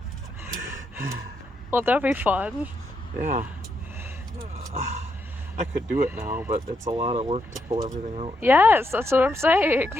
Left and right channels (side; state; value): both; normal; correlation 0.80